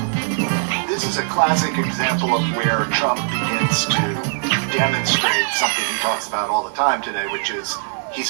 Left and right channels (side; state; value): left; silent; digital silence